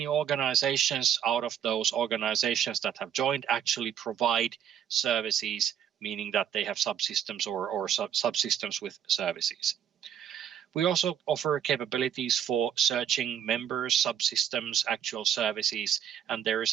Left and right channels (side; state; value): left; quieter; 9.2 dB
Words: organizations out of those organizations that have joined actually provide services, meaning that they have subsystems or subsystems with services. We also offer capabilities for searching members, subsystems, actual services, and there is